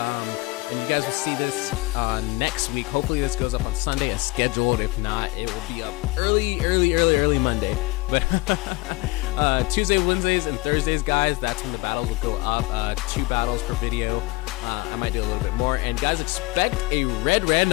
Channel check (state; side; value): quieter; right; 23.0 dB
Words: And you guys will see this next week. Hopefully this goes up on Sunday as scheduled. If not, it will be up early Monday. But Tuesday, Wednesdays, and Thursdays, guys, that's when the battles will go up. 2 battles per video. I might do a little bit more. And guys, expect a red